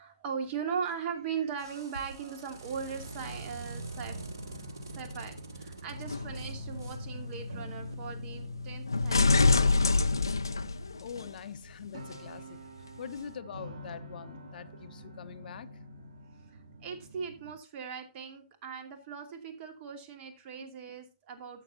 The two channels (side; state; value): both; inverted; correlation -0.76